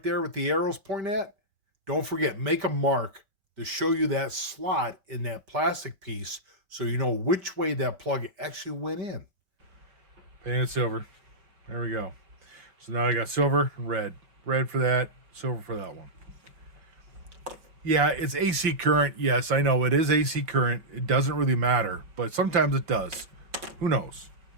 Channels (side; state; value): left; late; 5.3 ms